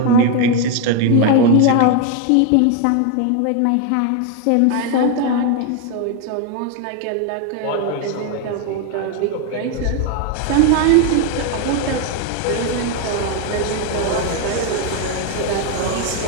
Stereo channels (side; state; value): both; different; correlation 0.01